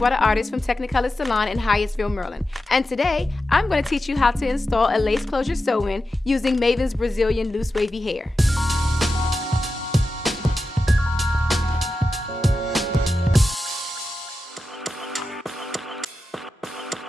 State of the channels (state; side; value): normal; both; correlation 0.91